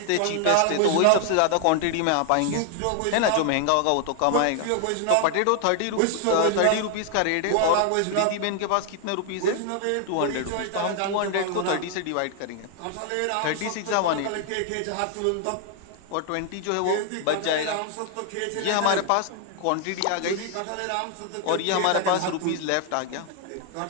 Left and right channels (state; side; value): different; both; correlation 0.00